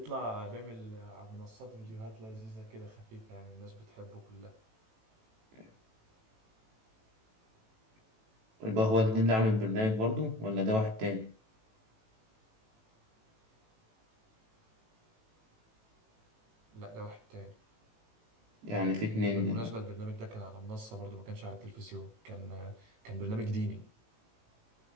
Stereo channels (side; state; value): left; late; 18 ms